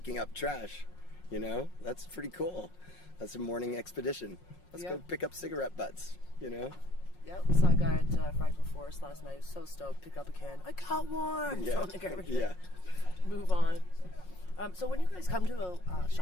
up trash. That's pretty cool. That's a morning expedition. Let's go pick up cigarette butts. Yep, saw a guy at Fractal Forest last night. He was so stoked, pick up a can. I got one! Yeah. Throw it in the garbage. Yeah. Move on. So when you guys come to a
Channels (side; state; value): right; late; 5.5 ms